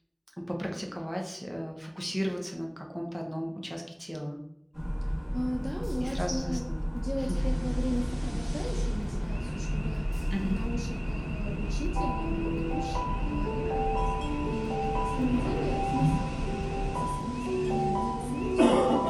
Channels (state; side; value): identical; both; correlation 1.00